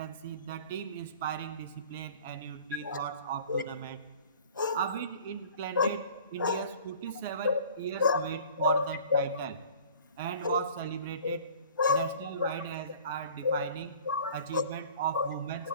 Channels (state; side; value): inverted; both; correlation -0.47